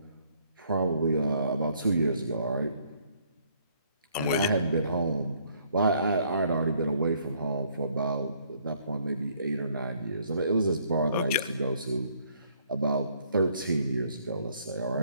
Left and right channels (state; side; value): inverted; both; correlation -0.65